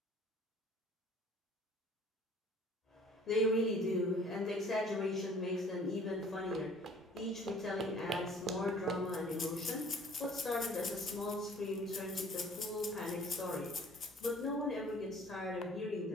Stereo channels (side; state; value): both; normal; correlation 0.52